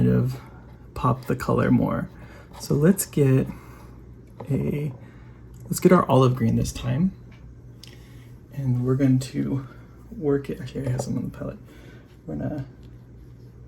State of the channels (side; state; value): both; identical; correlation 1.00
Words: of pop the color more. So let's get our olive green this time. And we're going to work it. Actually, I have some on the palette. We're gonna